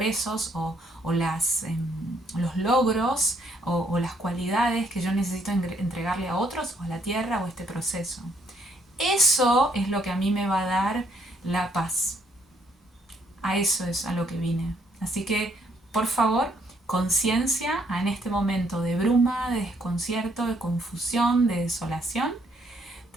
o los logros o las cualidades que yo necesito entregarle a otros o a la tierra o a este proceso. Eso es lo que a mí me va a dar la paz. A eso es a lo que vine. Así que, por favor, conciencia en este momento de bruma, de desconcierto, de confusión, de desolación.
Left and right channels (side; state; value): both; normal; correlation 0.69